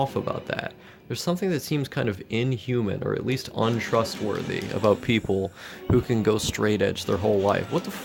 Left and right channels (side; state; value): both; identical; correlation 1.00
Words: about that. There's something that seems kind of inhuman, or at least untrustworthy, about people who can go straight edge their whole life. What the